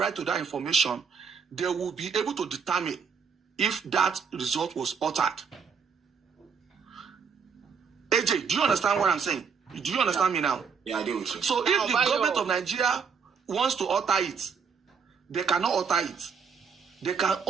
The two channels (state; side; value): quieter; left; 6.0 dB